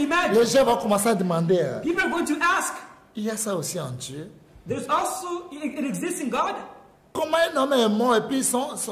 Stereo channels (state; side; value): identical; both; correlation 1.00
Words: Les gens vont commencer à demander, People are going to ask, il y a ça aussi en Dieu. there's also, it exists in God. Comment un homme est mort et puis son os